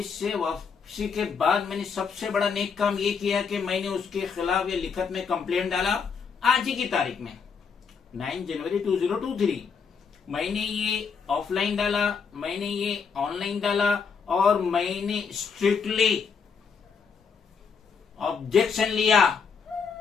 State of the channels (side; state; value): right; quieter; 5.9 dB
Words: से वापसी के बाद मैंने सबसे बड़ा नेक काम ये किया कि मैंने उसके खिलाफ ये लिखत में कंप्लेंट डाला। आज ही की तारीख में 9 जनवरी 2023 मैंने ये ऑफलाइन डाला, मैंने ये ऑनलाइन डाला और मैंने स्ट्रिक्टली ऑब्जेक्शन लिया।